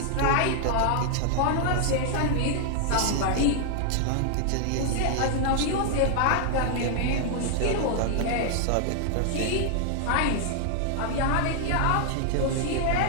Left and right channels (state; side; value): different; both; correlation 0.00